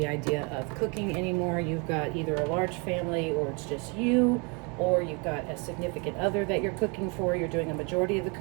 idea of cooking anymore. You've got either a large family, or it's just you, or you've got a significant other that you're cooking for. You're doing a majority of the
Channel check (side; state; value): left; quieter; 32.5 dB